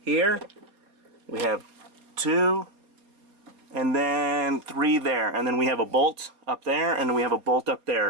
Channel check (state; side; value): late; left; 4.3 ms